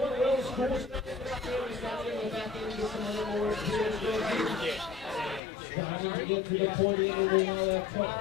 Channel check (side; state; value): right; drops out; at 5.4 s